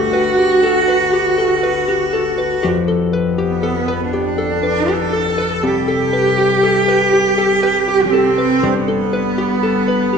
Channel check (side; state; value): left; noise; hum, 19 dB below the sound